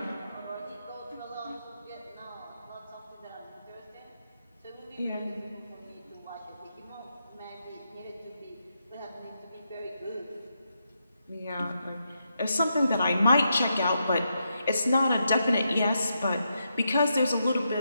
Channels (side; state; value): both; inverted; correlation -0.83